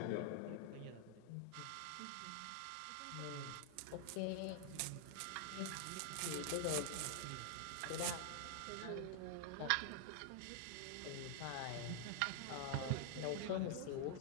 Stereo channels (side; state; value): both; different; correlation 0.00